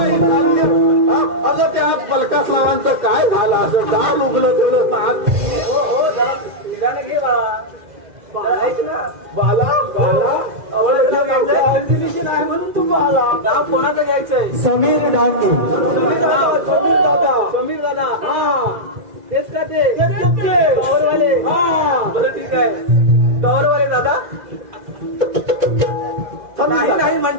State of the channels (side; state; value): left; late; 2.0 ms